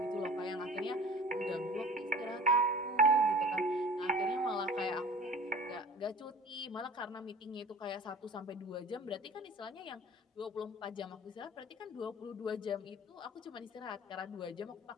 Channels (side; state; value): both; normal; correlation 0.42